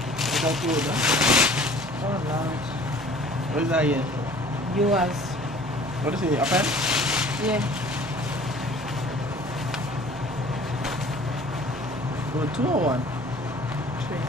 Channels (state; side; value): normal; both; correlation 0.49